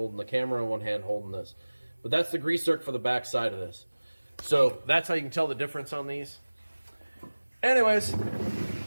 the camera and one hand holding this. But that's the grease zerk for the back side of this. So that's how you can tell the difference on these. Anyways,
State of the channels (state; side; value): inverted; both; correlation -1.00